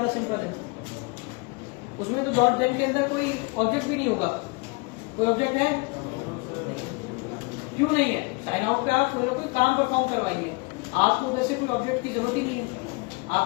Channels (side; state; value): right; quieter; 29.1 dB